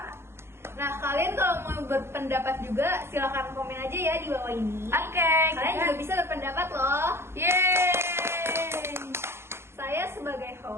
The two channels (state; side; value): late; left; 0.12 ms